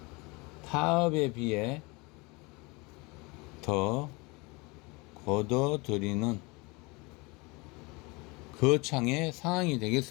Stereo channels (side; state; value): right; quieter; 26.3 dB